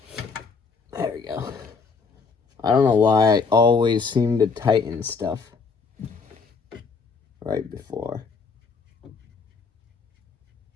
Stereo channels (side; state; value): right; quieter; 5.0 dB